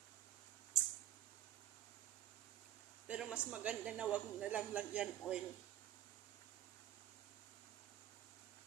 mas maganda na wag na lang lagyan oil.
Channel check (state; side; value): quieter; left; 12.4 dB